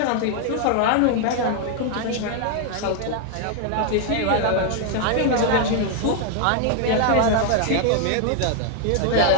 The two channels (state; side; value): different; both; correlation 0.01